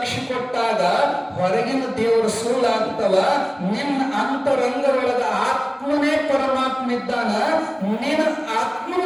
ಕೊಟ್ಟಾಗ ಹೊರಗಿನ ದೇವರು ಸುಳ್ಳಾಗ್ತವ. ನಿನ್ನ ಅಂತರಂಗದೊಳಗ ಆತ್ಮನೇ ಪರಮಾತ್ಮ ಇದ್ದಾನ. ನಿನ್ನ ಆತ್ಮನ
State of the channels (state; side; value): identical; both; correlation 1.00